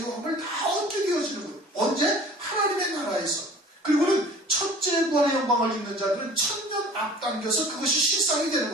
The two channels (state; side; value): normal; both; correlation 0.46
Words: 다 얻게 되어지는 거예요. 언제? 하나님의 나라에서. 그리고는 첫째 구원의 영광을 입는 자들은 천년 앞당겨서 그것이 실상이 되는